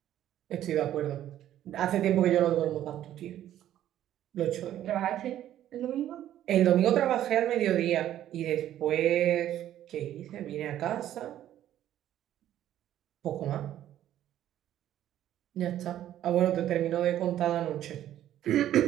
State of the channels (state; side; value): quieter; left; 12.0 dB